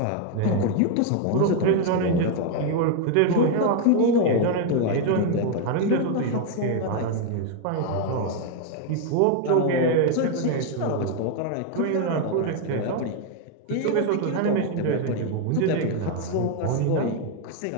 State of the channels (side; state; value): both; different; correlation 0.01